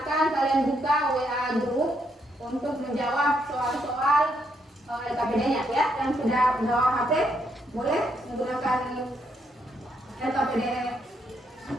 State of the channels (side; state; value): both; normal; correlation 0.76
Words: kalian buka WA grup untuk menjawab soal-soal LKPD-nya ya. Yang sudah bawa HP boleh menggunakan LKPD